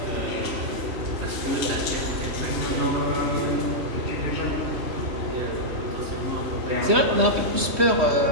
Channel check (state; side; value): late; left; 3.1 ms